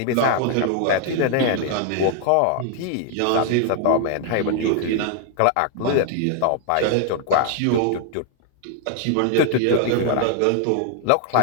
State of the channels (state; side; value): different; both; correlation 0.00